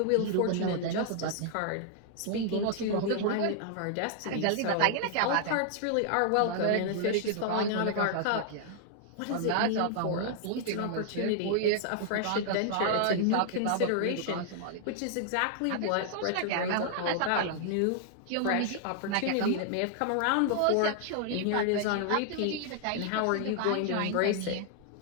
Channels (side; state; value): both; different; correlation 0.00